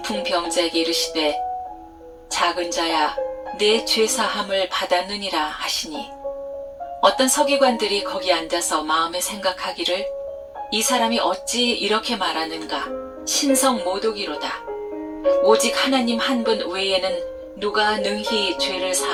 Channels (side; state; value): both; identical; correlation 1.00